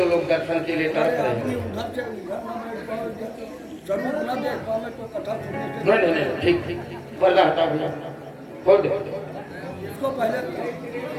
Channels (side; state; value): both; identical; correlation 1.00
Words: लोग दर्शन के लिए तरस रहे हैं। जरूर न देख पावे तो कथा सुनने से नहीं ठीक पर्दा हटा भैया, खोल दो। इसको पहले